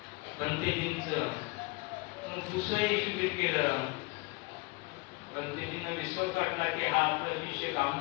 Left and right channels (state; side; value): quieter; right; 25.6 dB